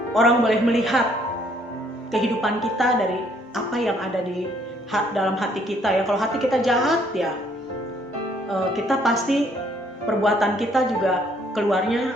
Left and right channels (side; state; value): both; normal; correlation 0.65